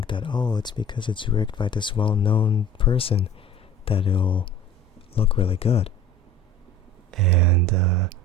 that, oh, it's because it's rigged by this well-known person that it'll look really good. And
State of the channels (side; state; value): both; normal; correlation 0.42